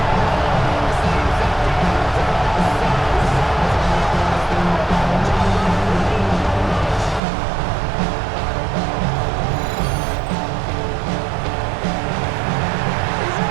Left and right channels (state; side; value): drops out; left; at 7.2 s